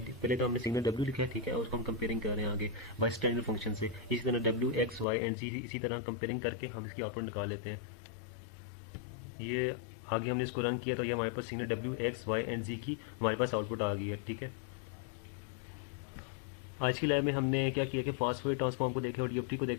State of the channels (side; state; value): right; drops out; at 5.1 s